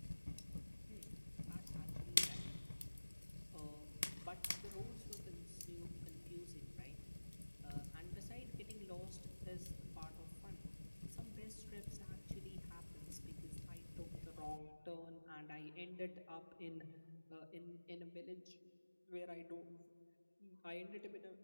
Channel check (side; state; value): both; inverted; correlation -1.00